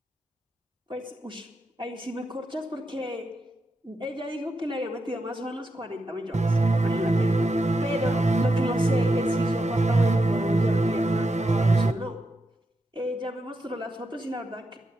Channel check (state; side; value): normal; both; correlation 0.85